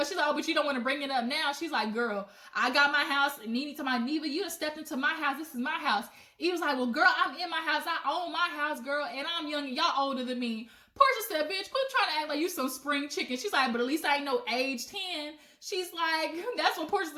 she's like, oh, but you don't want to bring it up now. She's like, girl, I got my house. And Nene to my Neva, you done stepped into my house. This is my house. Eva's like, well, girl, I'm in my house. I own my house, girl, and I'm young and y'all older than me. Portia said, bitch, quit trying to act like you some spring chicken. She's like, but at least I ain't no age 10. She's like, that's what Portia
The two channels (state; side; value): identical; both; correlation 1.00